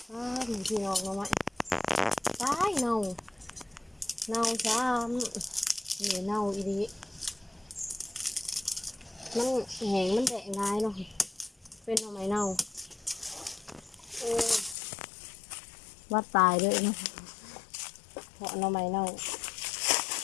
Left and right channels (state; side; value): drops out; right; at 14.8 s